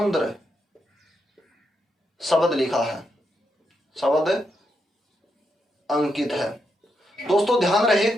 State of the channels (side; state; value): both; normal; correlation 0.82